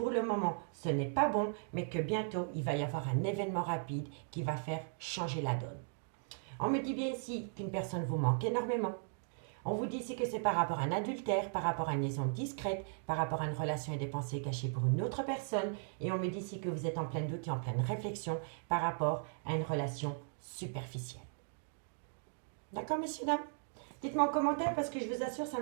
le moment, ce n'est pas bon, mais que bientôt, il va y avoir un événement rapide qui va faire changer la donne. On me dit bien ici qu'une personne vous manque énormément. On vous dit ici que c'est par rapport à un adultère, par rapport à une liaison discrète, par rapport à une relation et des pensées cachées pour une autre personne. Et on me dit ici que vous êtes en plein doute et en pleine réflexion par rapport à une relation superficielle. D'accord, messieurs, dames? Dites-moi en commentaire parce que je vous assure, ça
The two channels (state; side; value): silent; left; digital silence